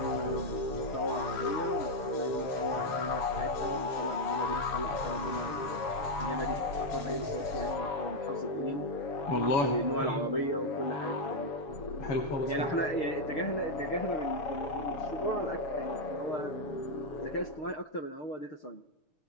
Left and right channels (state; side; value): late; right; 7.1 ms